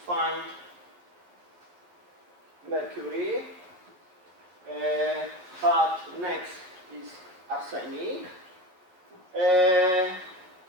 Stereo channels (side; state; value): left; late; 11 ms